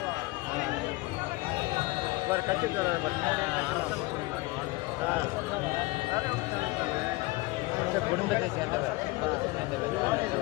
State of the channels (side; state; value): right; quieter; 22.2 dB